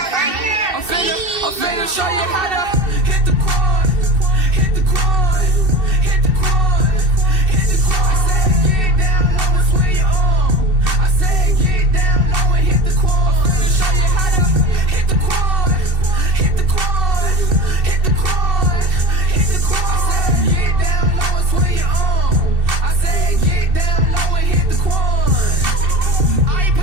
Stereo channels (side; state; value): left; late; 2.7 ms